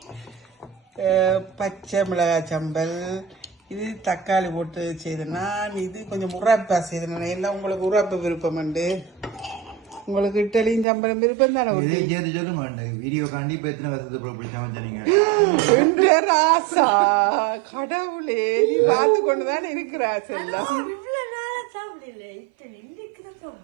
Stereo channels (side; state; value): left; drops out; at 10.9 s